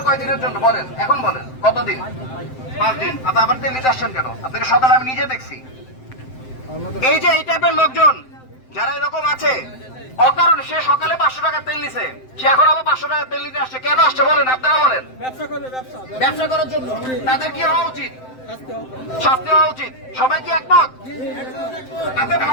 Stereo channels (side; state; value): right; late; 7.7 ms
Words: কয়দিনের জন্য বলেন, এখন বলেন কতদিন? 5 দিন। আপনি আবার তেল নিতে আসছেন কেন? আপনাকে সকালে আমি নিজে দেখছি। এই যে এই টাইপের লোকজন যারা এরকম আছে, অকারণে সে সকালে 500 টাকার তেল নিছে, সে এখন আবার 500 টাকার তেল নিতে আসছে। কেন আসছে বলেন, আপনারা বলেন। ব্যবসা করার জন্য। তাদের কি হওয়া উচিত? শাস্তি হওয়া উচিত। সবাই কি একমত? আপনি